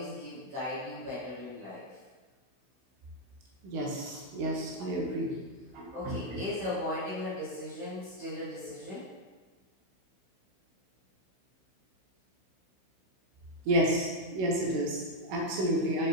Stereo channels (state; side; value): late; left; 16 ms